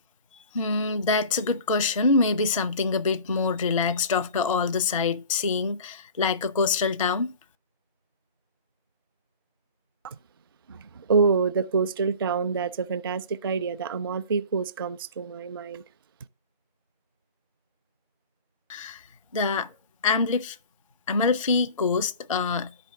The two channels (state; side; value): inverted; both; correlation -0.39